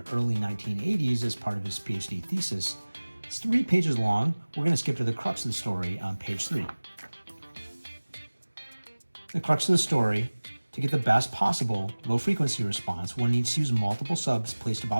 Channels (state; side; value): inverted; both; correlation -1.00